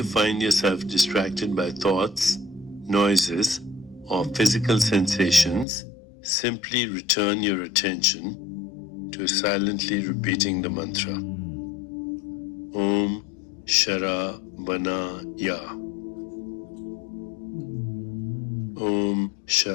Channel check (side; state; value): right; drops out; at 5.7 s